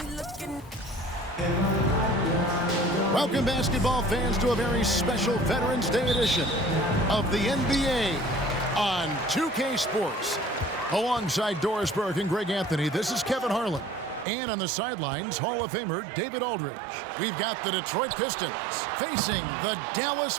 looking. Welcome, basketball fans, to a very special Veterans Day edition of the NBA on 2K Sports. Alongside Doris Burke and Greg Anthony, this is Kevin Harlan. And on the sidelines, Hall of Famer David Aldridge. We've got the Detroit Pistons facing the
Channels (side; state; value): left; drops out; at 14.2 s